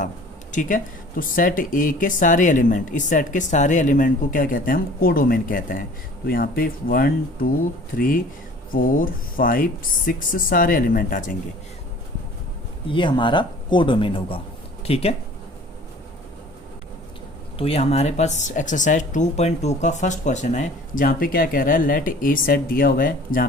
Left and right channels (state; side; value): normal; both; correlation 0.48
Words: ठीक है। तो सेट ए के सारे एलिमेंट, इस सेट के सारे एलिमेंट को क्या कहते हैं हम, कोडोमेन कहते हैं। तो यहाँ पे 1 2 3 4 5 6 सारे एलिमेंट आ जाएंगे, ये हमारा कोडोमेन होगा, ठीक है। तो ये हमारे पास एक्सरसाइज 2.2 का फर्स्ट क्वेश्चन है, जहाँ पे क्या कह रहा है, लेट ए सेट दिया हुआ है जहाँ